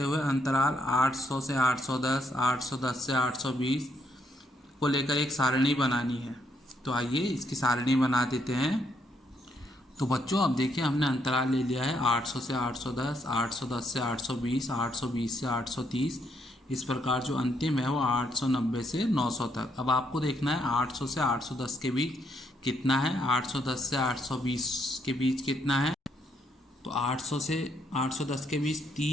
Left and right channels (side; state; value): both; normal; correlation 0.74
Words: हुए अंतराल 800 से 810, 810 से 820 को लेकर एक सारणी बनानी है। तो आइए इसकी सारणी बना देते हैं। तो बच्चों, अब देखिए, हमने अंतराल ले लिया है 800 से 810, 810 से 820, 820 से 830। इस प्रकार जो अंतिम है वो 890 से 900 तक। अब आपको देखना है 800 से 810 के बीच कितना है, 810 से 820 के बीच कितना है। तो 800 से 810 के बीच